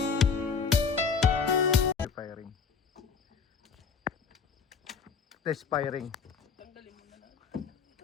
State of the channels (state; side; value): quieter; right; 5.7 dB